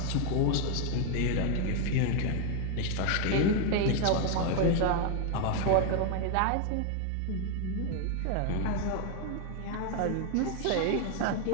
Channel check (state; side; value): different; both; correlation 0.01